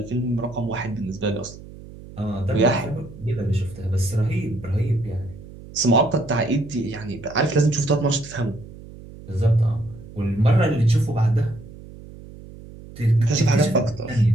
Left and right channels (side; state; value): right; noise; hum, 17 dB below the sound